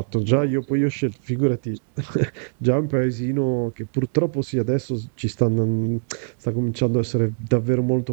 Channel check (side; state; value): left; silent; digital silence